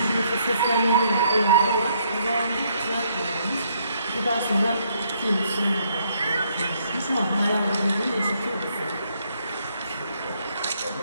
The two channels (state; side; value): inverted; both; correlation -0.70